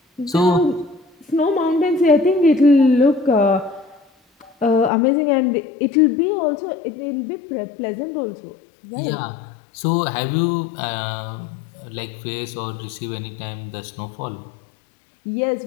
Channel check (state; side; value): drops out; right; at 4.9 s